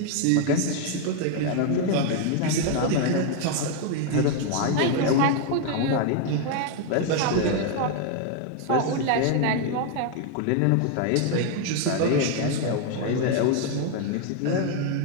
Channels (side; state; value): both; different; correlation 0.00